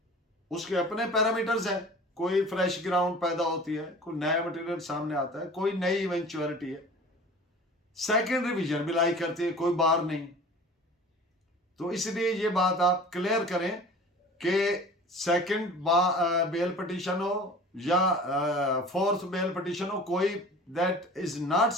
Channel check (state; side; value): normal; both; correlation 0.42